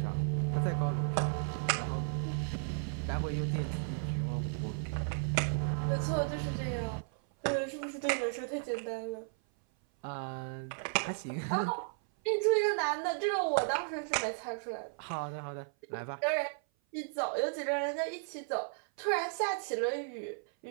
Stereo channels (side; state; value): left; silent; 55 dB below the other